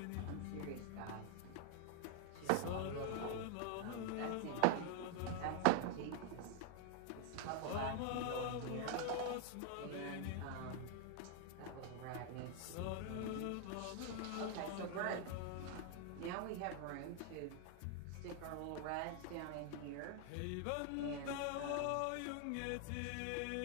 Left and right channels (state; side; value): different; both; correlation 0.00